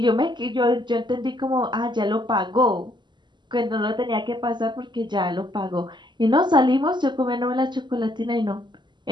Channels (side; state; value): left; late; 0.22 ms